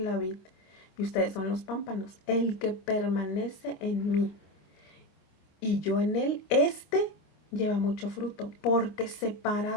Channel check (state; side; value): late; right; 26 ms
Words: vid y ustedes son los pámpanos. El que permanece en mí y yo en él, lleva mucho fruto, porque